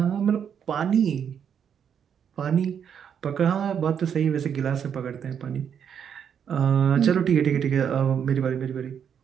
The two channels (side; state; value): left; quieter; 8.0 dB